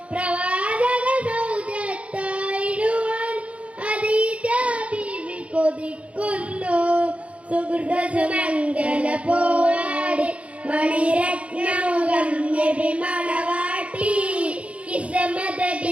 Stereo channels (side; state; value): left; late; 0.063 ms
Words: പ്രവാചക സൗജത്തായിടുവാൻ ഖദീജ ബീവി കൊതിക്കുന്നു. സുഹൃത സുമംഗല പോവാടി മണിരത്നമുഖം നബി മണവാട്ടി. കിസ്മത